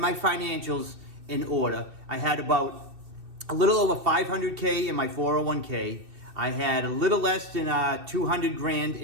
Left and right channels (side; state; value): left; late; 2.6 ms